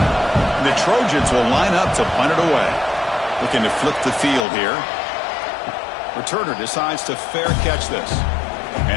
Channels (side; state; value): right; drops out; at 4.5 s